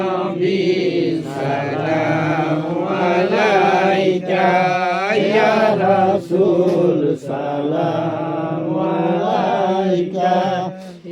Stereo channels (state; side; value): identical; both; correlation 1.00